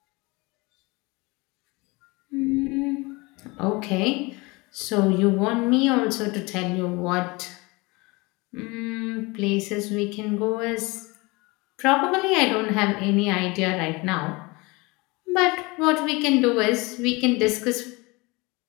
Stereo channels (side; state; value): right; quieter; 25.1 dB